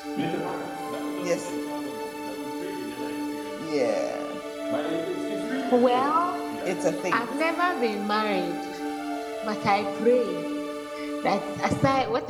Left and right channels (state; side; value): identical; both; correlation 1.00